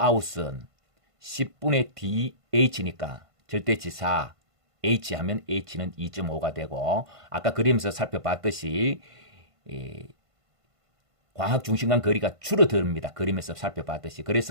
10분의 DH니까 절대치 4, H 하면 H는 2.5가 되고, 아까 그림에서 살펴봤듯이 광학 중심간 거리가 줄어듭니다. 그림에서 살펴봤듯이.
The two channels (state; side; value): late; left; 1.5 ms